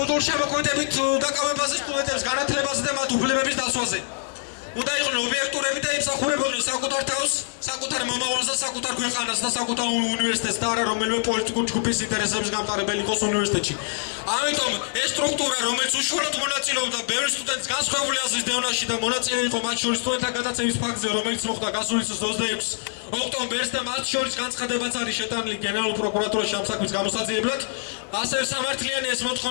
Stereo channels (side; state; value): right; silent; 62 dB below the other